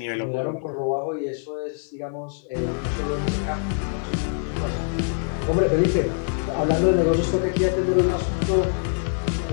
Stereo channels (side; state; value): right; silent; 62 dB below the other